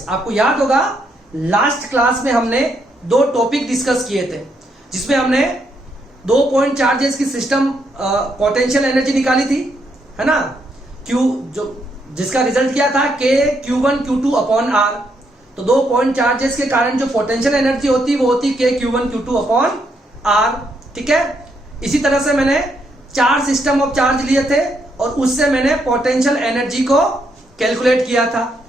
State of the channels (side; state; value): both; normal; correlation 0.76